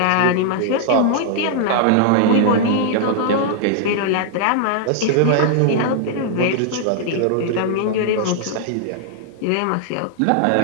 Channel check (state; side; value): different; both; correlation -0.01